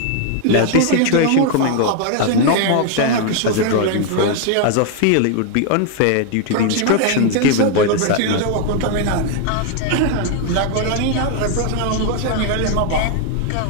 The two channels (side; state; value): both; different; correlation 0.00